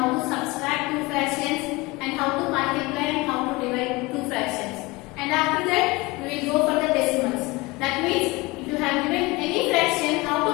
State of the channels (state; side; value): quieter; right; 23.2 dB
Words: to subtract two fractions, and how to multiply and how to divide two fractions. And after that we will go for the decimals. That means if you have given any fraction, how to